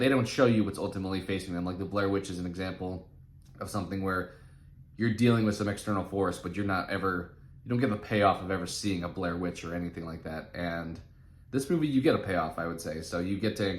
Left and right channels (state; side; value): identical; both; correlation 1.00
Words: don't show you what's ultimately facing them. Like the Blair Witch is an example of something where you're dealing with some external force, but you're not ever you don't get the payoff of ever seeing a Blair Witch or anything like that. And this movie, you get a payoff, I would say. So you get to